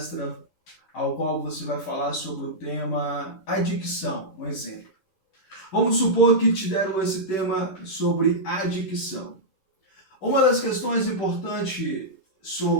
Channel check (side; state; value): right; late; 11 ms